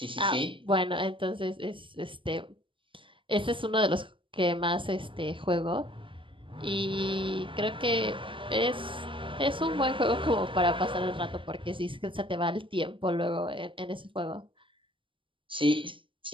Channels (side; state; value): left; late; 0.25 ms